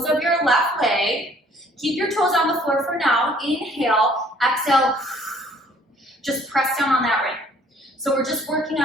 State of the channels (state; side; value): normal; both; correlation 0.58